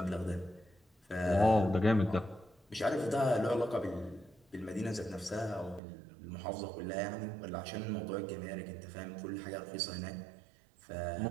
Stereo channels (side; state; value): left; drops out; at 5.8 s